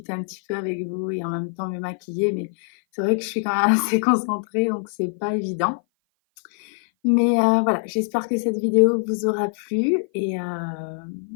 un petit peu avec vous et en même temps me maquiller, mais c'est vrai que je suis quand même assez concentrée donc c'est pas évident. Mais voilà, j'espère que cette vidéo vous aura plu et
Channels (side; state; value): right; silent; 56 dB below the other